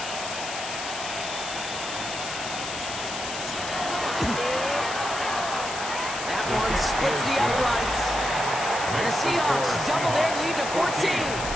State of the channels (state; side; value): noise; left; hiss, 7 dB below the sound